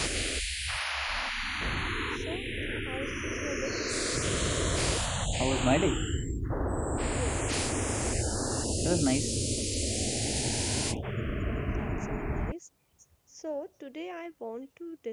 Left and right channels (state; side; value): identical; both; correlation 1.00